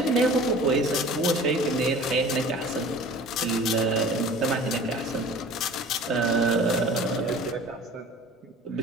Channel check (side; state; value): both; normal; correlation 0.43